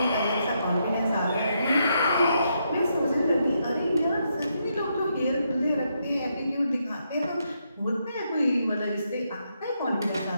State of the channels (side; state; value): both; inverted; correlation -0.79